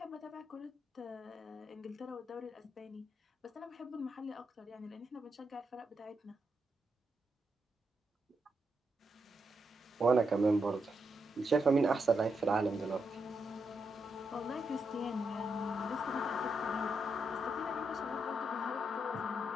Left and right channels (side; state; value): both; normal; correlation 0.82